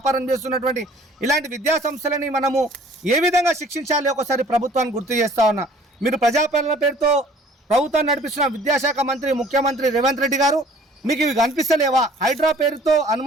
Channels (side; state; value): both; normal; correlation 0.53